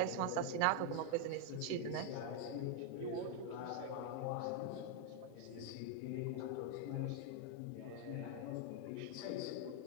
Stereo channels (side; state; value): both; different; correlation 0.00